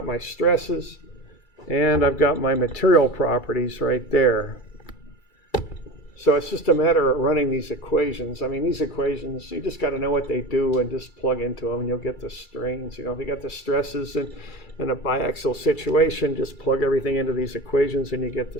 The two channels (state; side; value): late; right; 2.3 ms